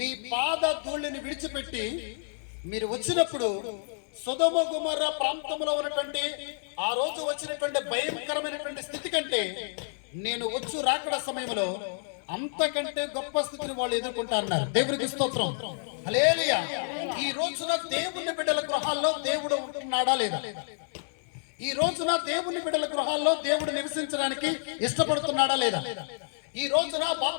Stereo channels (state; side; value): silent; right; 58 dB below the other